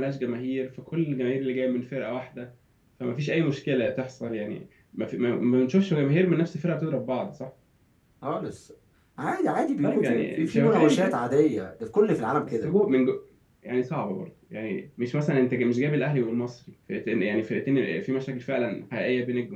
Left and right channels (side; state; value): both; identical; correlation 1.00